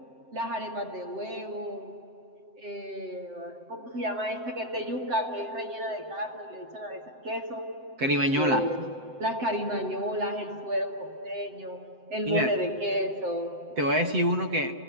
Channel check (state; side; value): late; left; 7.7 ms